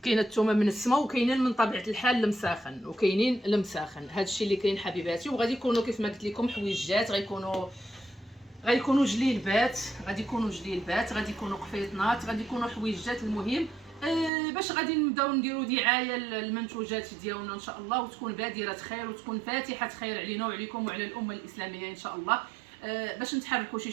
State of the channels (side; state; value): left; drops out; at 14.3 s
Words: وكاينين من طبيعه الحال المساخن، وكاينين المساخن. هادشي اللي كاين حبيباتي. وغادي يكونوا كيف ما قلت لكم حويجات، غيكونوا جليلبات، غادي يكونوا قفيطنات، غادي يكونوا حويجات. المهم باش غادي نبداو نديروا دعايه للمنتوجات ديالنا ان شاء الله، وتكون بادره خير، وتكون فاتحه خير علينا وعليكم وعلى الامه الاسلاميه ان شاء الله. باش نتحركوا شي